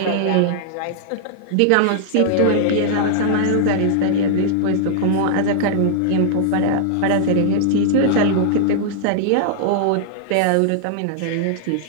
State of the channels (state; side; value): different; both; correlation -0.01